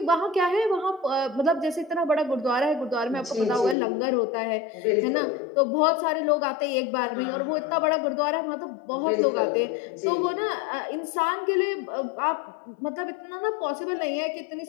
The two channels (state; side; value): drops out; right; at 3.8 s